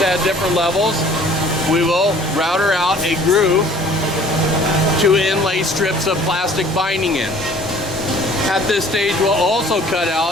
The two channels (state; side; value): normal; both; correlation 0.52